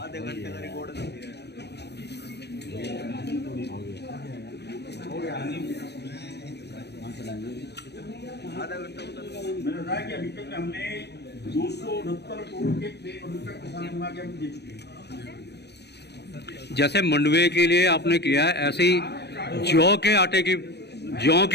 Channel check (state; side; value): late; right; 0.49 ms